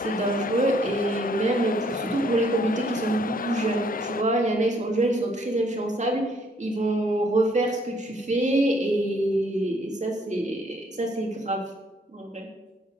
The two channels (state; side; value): normal; both; correlation 0.65